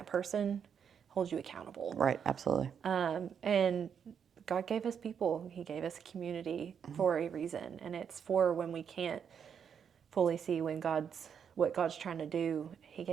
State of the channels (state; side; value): quieter; left; 7.5 dB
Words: person, holds you accountable. Right, absolutely. And God gave us people. He gave us a community for a reason, and it's for when we can't fully see what God's trying to do. He